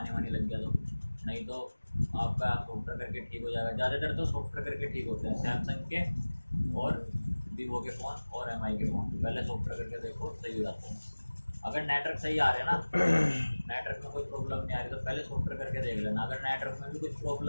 लग गया तो, नहीं तो आपका सॉफ्टवेयर करके ठीक हो जाएगा। ज़्यादातर तो सॉफ्टवेयर करके ठीक होते हैं, सैमसंग के और वीवो के फ़ोन और MI के फ़ोन पहले सॉफ्टवेयर करके देखो, सही हो जाते हैं। अगर नेटवर्क सही आ रहे हैं ना, नेटवर्क में कोई प्रॉब्लम नहीं आ रही तो पहले सॉफ्टवेयर करके देख लेना। अगर नेटवर्क में भी कुछ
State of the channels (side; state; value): both; inverted; correlation -1.00